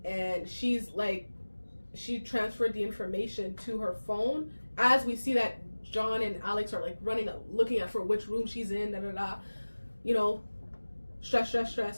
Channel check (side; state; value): both; inverted; correlation -1.00